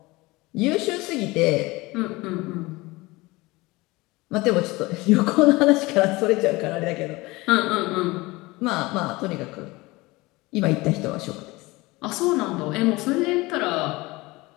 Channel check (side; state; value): right; quieter; 21.9 dB